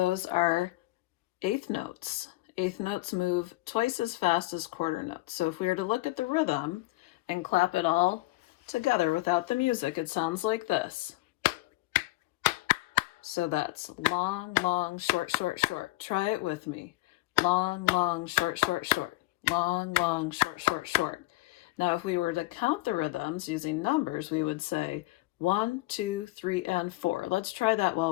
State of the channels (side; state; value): right; quieter; 19.9 dB